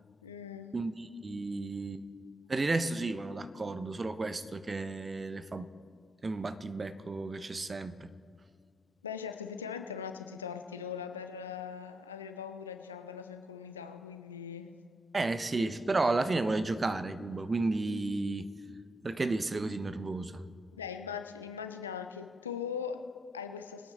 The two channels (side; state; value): both; normal; correlation 0.80